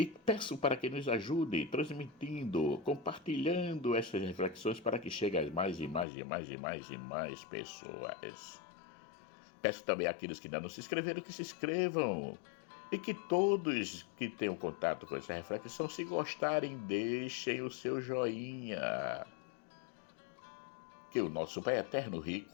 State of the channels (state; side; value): drops out; right; at 6.1 s